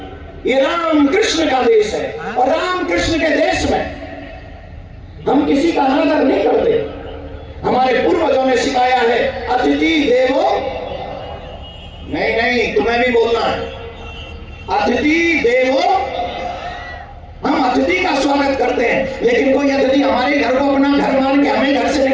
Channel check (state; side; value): identical; both; correlation 1.00